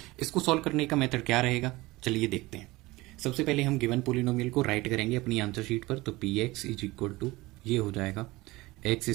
इसको सॉल्व करने का मेथड क्या रहेगा, चलिए देखते हैं। सबसे पहले हम गिवन पोलिनोमियल को राइट करेंगे अपनी आंसर शीट पर। तो p x is equal to ये हो जाएगा x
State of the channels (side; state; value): left; quieter; 20.5 dB